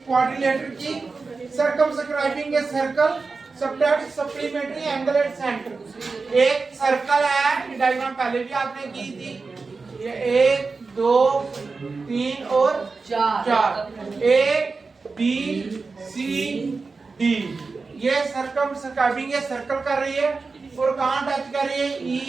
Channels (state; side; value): quieter; left; 4.2 dB